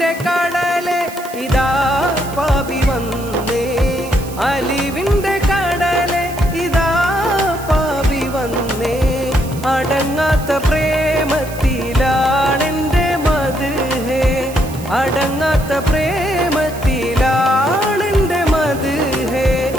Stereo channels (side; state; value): right; noise; hiss, 16 dB below the sound